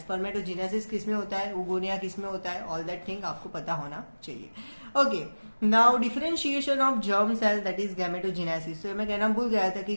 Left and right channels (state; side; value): inverted; both; correlation -1.00